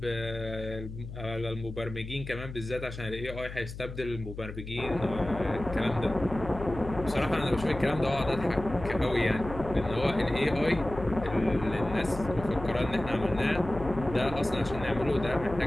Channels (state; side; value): noise; left; hum, 11 dB below the sound